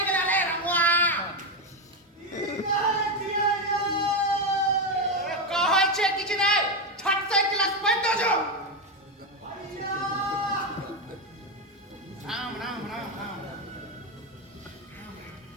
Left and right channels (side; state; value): both; normal; correlation 0.09